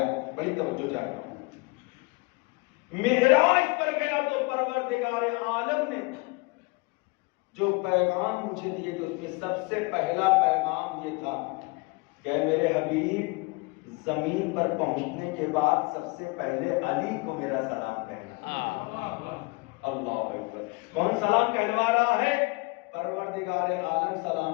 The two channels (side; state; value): right; quieter; 26.9 dB